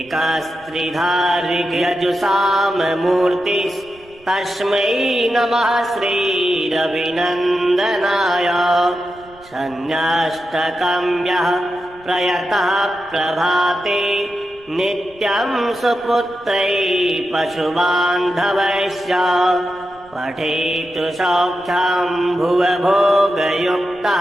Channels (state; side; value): noise; right; rumble, 27 dB below the sound